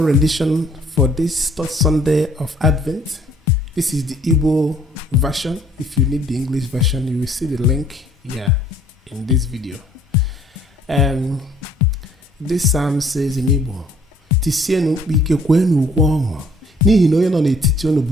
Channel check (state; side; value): normal; both; correlation 0.59